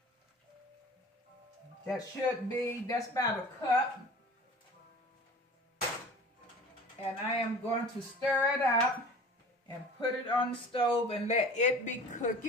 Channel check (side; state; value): both; normal; correlation 0.42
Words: That's about a cup. And I am going to stir it up and put it on the stove and let it be